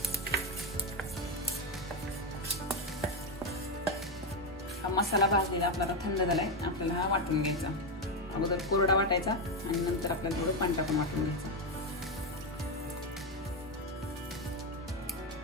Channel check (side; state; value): both; normal; correlation 0.09